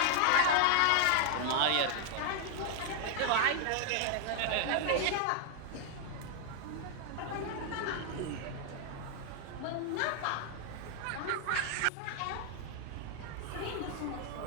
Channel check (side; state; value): both; different; correlation 0.00